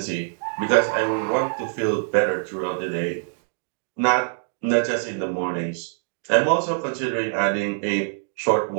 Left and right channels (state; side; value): silent; left; digital silence